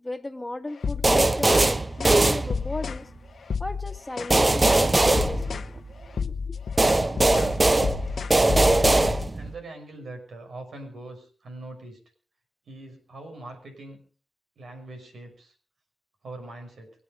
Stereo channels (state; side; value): normal; both; correlation 0.96